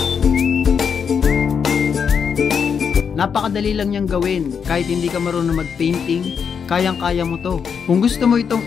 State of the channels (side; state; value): right; quieter; 6.7 dB